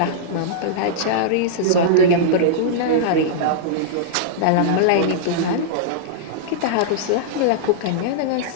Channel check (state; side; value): different; both; correlation -0.03